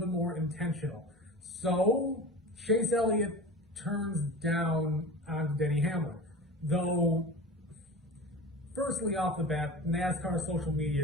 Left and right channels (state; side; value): normal; both; correlation 0.33